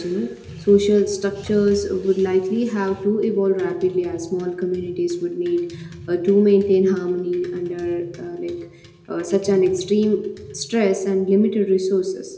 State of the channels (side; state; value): both; identical; correlation 1.00